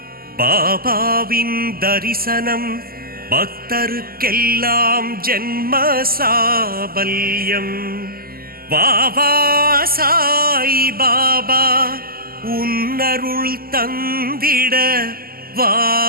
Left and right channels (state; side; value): late; left; 0.43 ms